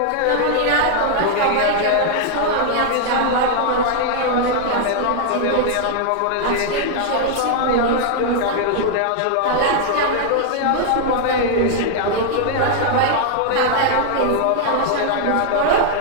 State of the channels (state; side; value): different; both; correlation -0.01